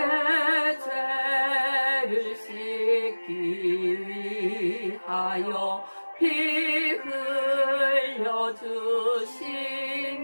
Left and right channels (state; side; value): inverted; both; correlation -1.00